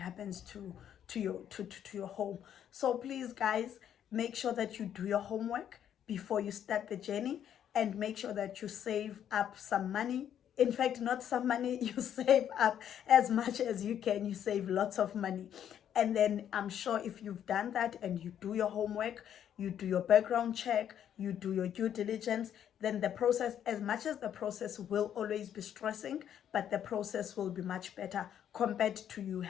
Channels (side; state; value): right; quieter; 9.7 dB